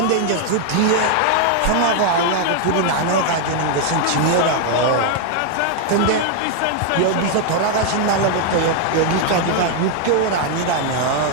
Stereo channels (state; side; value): different; both; correlation 0.00